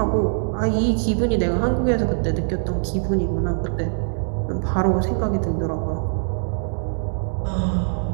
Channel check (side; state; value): left; silent; 64 dB below the other